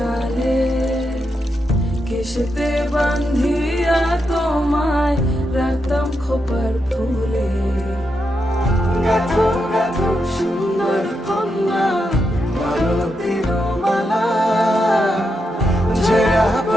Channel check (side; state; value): both; normal; correlation 0.84